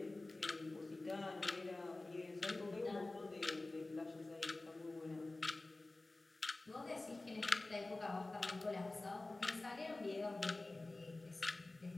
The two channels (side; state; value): right; quieter; 3.0 dB